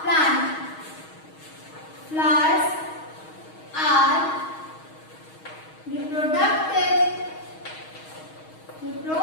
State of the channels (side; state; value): right; late; 6.3 ms